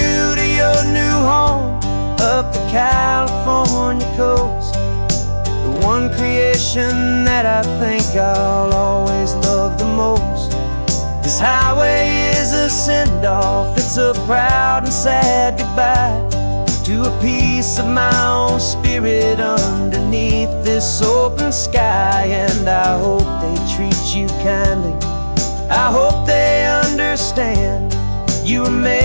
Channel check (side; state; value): both; inverted; correlation -1.00